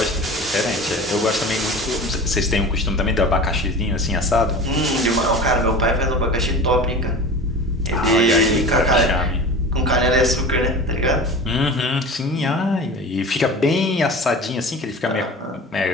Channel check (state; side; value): normal; both; correlation 0.35